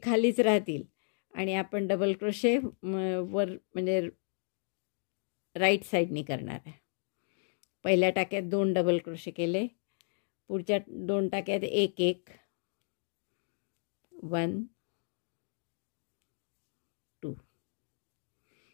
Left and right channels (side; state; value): right; silent; digital silence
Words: खालीच राहतील आणि आपण डबल क्रोशे वर म्हणजे राईट साईडनी करणार आहे. पहिल्या टाक्यात 2 डबल क्रोशे केले, पुढच्या 2 टाक्यात 1 1, 1, 2